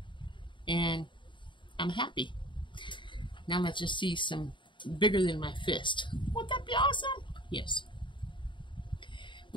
and I'm happy. Now let's just see some bigger than my fist. Wouldn't that be awesome? Yes.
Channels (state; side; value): late; right; 0.23 ms